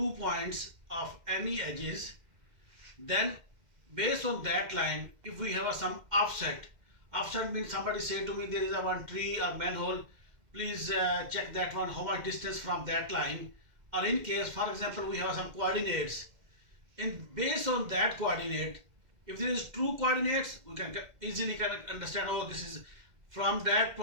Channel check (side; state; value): left; late; 2.1 ms